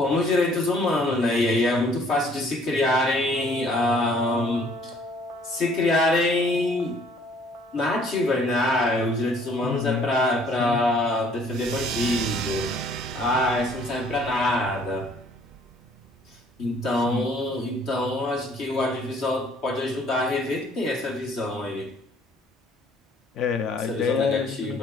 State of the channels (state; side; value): normal; both; correlation 0.59